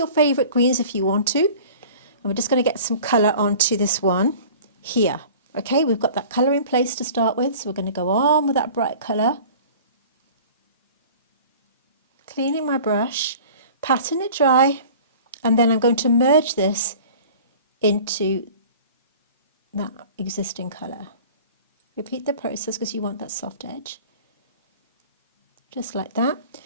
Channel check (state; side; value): inverted; both; correlation -0.43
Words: favourite greens if you want to. And we're just going to get some colour onto this one here. Okay, we've got that colour in place to start with, so we're going to go on with that bright colour. Cleaning my brush, patting it dry, and then I'm going to merge this into that existing colour. Repeat the process because you want that soft edge. Just like that.